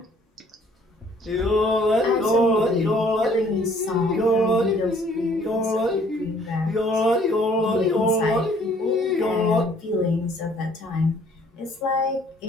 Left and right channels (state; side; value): normal; both; correlation 0.60